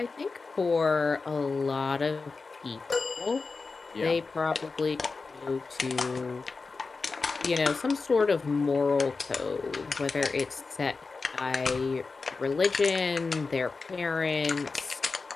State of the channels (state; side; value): quieter; right; 4.2 dB